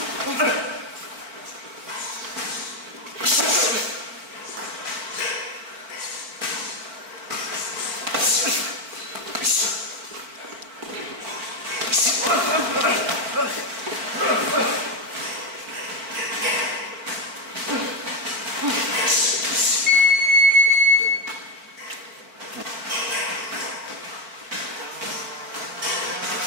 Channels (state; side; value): late; left; 4.4 ms